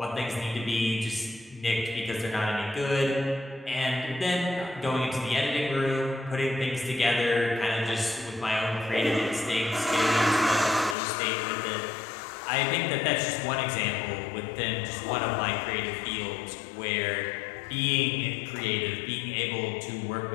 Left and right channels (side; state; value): right; drops out; at 11.0 s